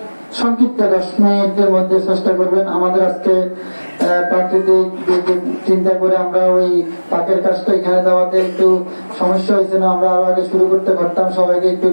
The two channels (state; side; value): inverted; both; correlation -1.00